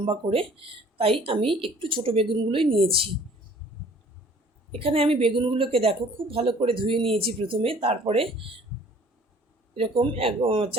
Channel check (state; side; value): normal; both; correlation 0.53